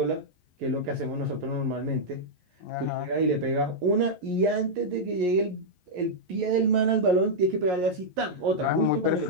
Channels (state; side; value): late; left; 11 ms